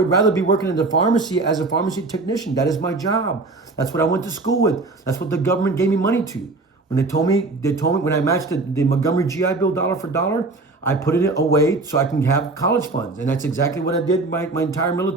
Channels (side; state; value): left; quieter; 3.4 dB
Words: rather be working in the pharmacy as a pharmacy technician. That is my job. That's what I went to school with. That's what the government gave me money to. When they told me when I matched the Montgomery GI Bill dollar for dollar, I put it away so I can have college funds. And that's exactly what I did my entire